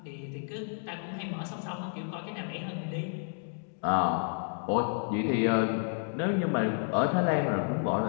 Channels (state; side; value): silent; right; 55 dB below the other